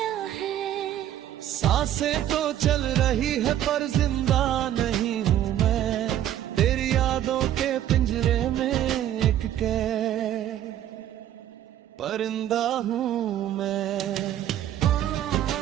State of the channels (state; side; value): quieter; left; 11.7 dB